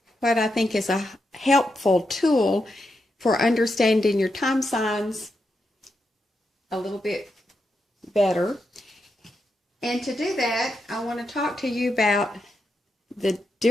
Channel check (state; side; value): normal; both; correlation 0.85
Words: what I think is a helpful tool for understanding your time signs a little bit better. And to do that, I want to talk to you about the